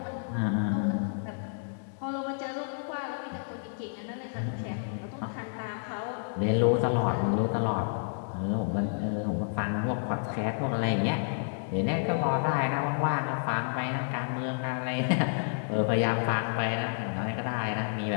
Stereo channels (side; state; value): right; silent; digital silence